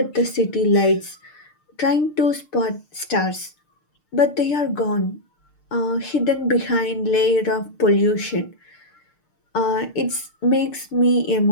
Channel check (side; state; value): right; late; 6.6 ms